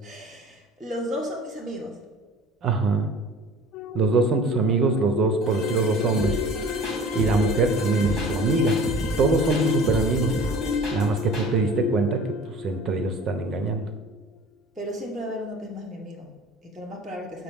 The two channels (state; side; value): normal; both; correlation 0.44